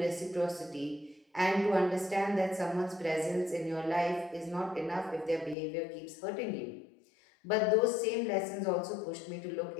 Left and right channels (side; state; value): right; drops out; at 5.6 s